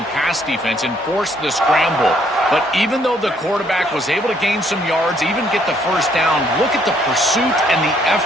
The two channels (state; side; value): normal; both; correlation 0.67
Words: pass defense and forced the scramble. But even though the quarterback was able to gain some yards, even get the first down, look at the pursuit and the